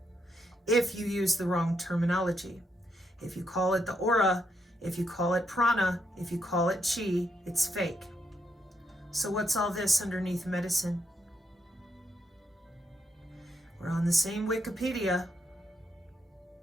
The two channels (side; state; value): both; normal; correlation 0.79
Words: If you use the wrong terminology. If you call it the aura, if you call it prana, if you call it chi, it's fake. So what's all this underneath medicine? We're on the same Wikipedia.